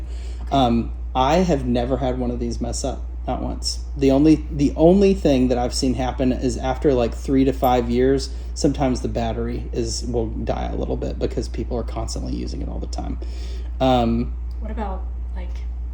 I have never had one of these mess up, not once. The only thing that I've seen happen is after like 3 to 5 years, sometimes the battery will die a little bit because people are constantly using it all the time. What about like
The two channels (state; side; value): identical; both; correlation 1.00